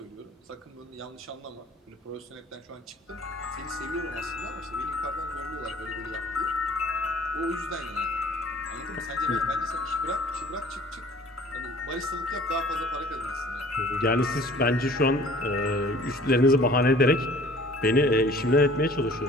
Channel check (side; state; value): both; normal; correlation 0.50